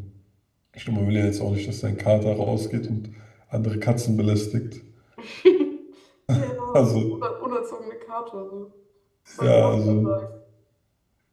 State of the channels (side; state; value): both; identical; correlation 1.00